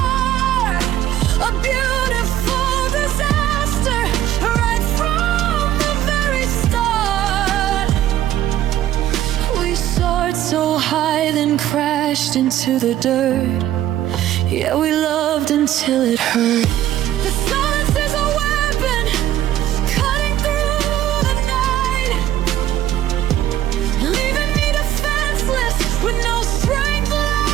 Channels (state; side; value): quieter; left; 12.4 dB